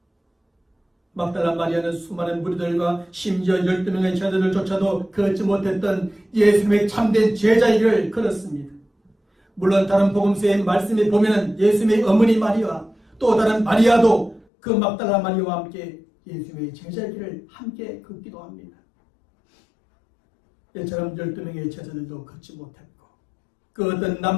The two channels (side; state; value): right; drops out; at 14.5 s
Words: 막달라 마리아는 수많은 무리들과 심지어 12명의 제자들조차도 걷지 못했던 예수님의 참된 제자의 길을 걸었습니다. 물론 다른 복음서의 말씀에 보면 예수님의 어머니 마리아, 또 다른 마리아도 그 막달라 마리아와 함께 예수님의 제자의 길을 함께 걷기도 합니다. 이처럼 12명의 제자들도 걷지 못했고 그 어떤